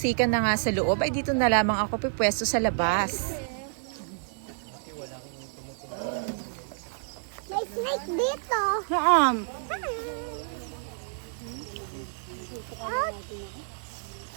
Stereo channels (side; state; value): left; silent; digital silence